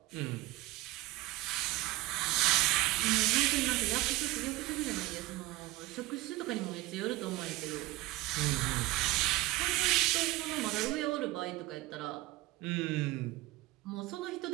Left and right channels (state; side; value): quieter; left; 18.3 dB